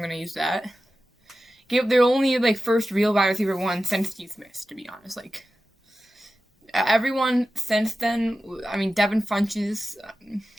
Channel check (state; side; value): normal; both; correlation 0.93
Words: gonna use that. Gave their only first real wide receiver one since Steve Smith, to be honest. Everyone since then, Devin Funchess,